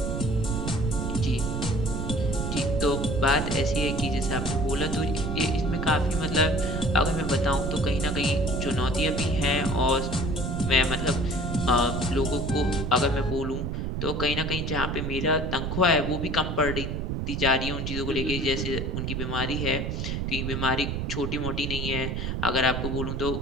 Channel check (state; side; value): noise; right; rumble, 2 dB below the sound